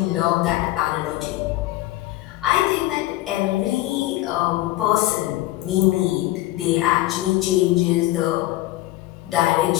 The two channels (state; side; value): quieter; right; 17.1 dB